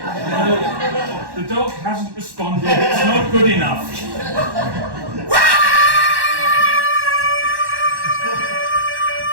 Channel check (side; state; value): left; late; 1.1 ms